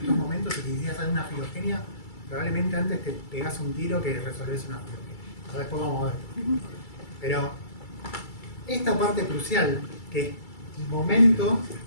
momentos y quisieras hacer una filogenia, probablemente antes te pegás un tiro que resolvés una filogenia. Ahora después vamos a ver. Pero esta parte crucial, que es el momento,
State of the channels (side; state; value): right; late; 2.3 ms